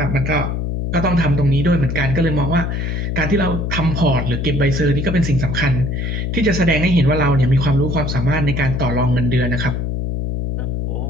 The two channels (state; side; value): noise; left; hum, 2 dB below the sound